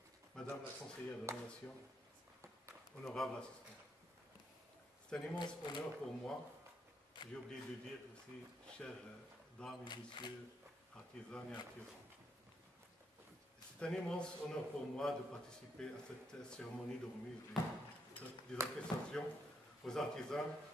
Madame la conseillère de la Nation, honorable assistant. C'est un immense honneur pour moi, j'ai oublié de dire aussi, chères dames et messieurs, artisans et artisans. C'est un immense honneur pour moi de participer à cette cérémonie de remise des attestations aux artisans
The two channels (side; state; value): both; normal; correlation 0.77